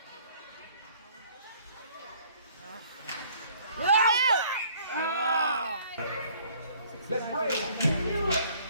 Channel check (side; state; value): both; inverted; correlation -0.57